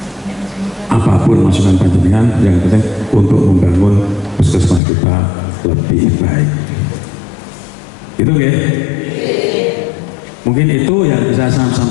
apapun masukan panjenengan, yang penting untuk membangun puskesmas kita lebih baik. Itu ya. Mungkin itu yang bisa saya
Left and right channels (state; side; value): drops out; right; at 4.8 s